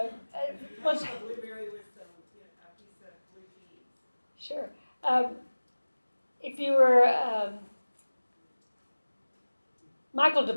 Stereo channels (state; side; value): inverted; both; correlation -1.00